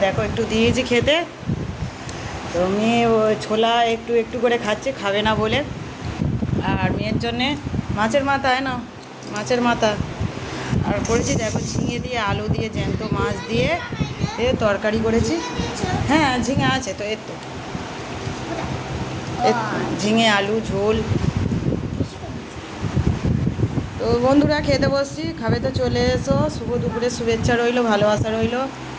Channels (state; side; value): identical; both; correlation 1.00